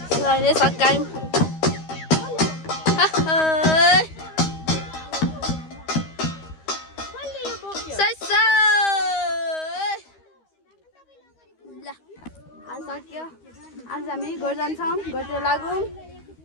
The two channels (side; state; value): right; late; 13 ms